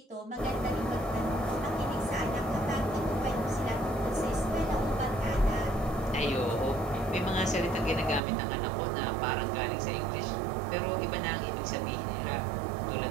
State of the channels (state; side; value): drops out; left; at 8.2 s